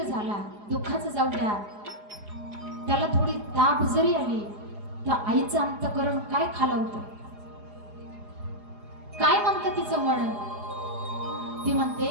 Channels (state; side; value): late; left; 4.9 ms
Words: झाला, दुःखाचं जाऊ द्या, त्याला थोडी ताप जरी आली तर आईचं अंतःकरण काय खालावतं, काय म्हणतं तिचं मन. ती